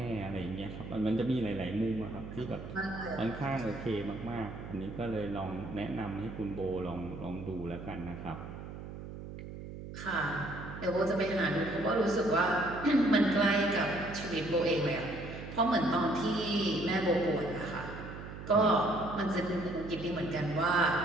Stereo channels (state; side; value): noise; right; hum, 10 dB below the sound